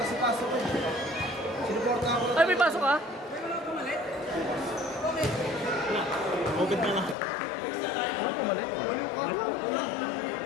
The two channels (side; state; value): right; drops out; at 7.2 s